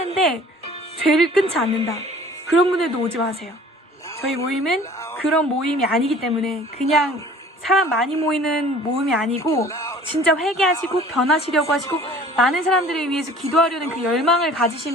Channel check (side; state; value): both; normal; correlation 0.48